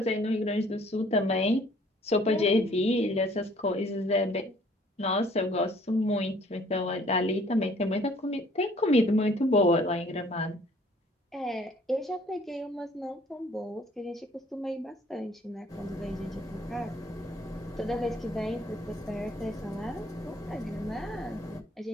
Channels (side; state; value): both; normal; correlation 0.58